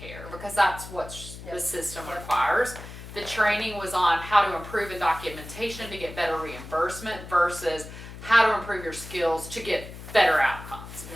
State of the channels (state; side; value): noise; left; hum, 13 dB below the sound